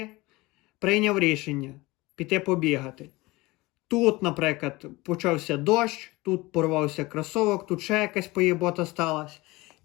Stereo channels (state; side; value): quieter; right; 21.6 dB